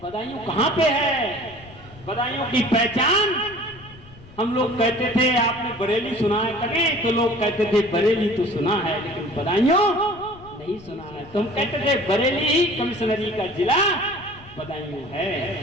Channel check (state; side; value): noise; left; rumble, 21 dB below the sound